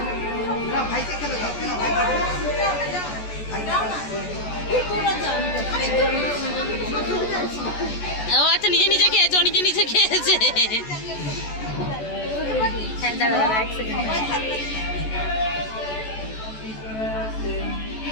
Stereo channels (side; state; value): right; late; 14 ms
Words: ও আচ্ছা, নিজে নিজে খেয়েছে, ও নিজে নিজে খেয়েছে। হ্যাঁ দাঁড়া দাঁড়া এক সেকেন্ড।